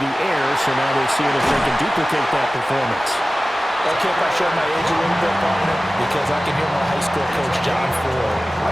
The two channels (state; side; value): normal; both; correlation 0.96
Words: air, so now they're seeing if they can duplicate that performance. Okay, if I show my age a little bit, partner, because I can hear my high school coach, John Ford. I